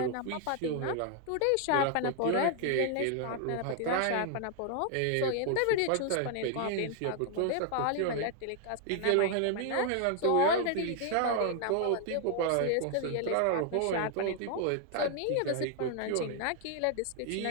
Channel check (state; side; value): different; both; correlation 0.00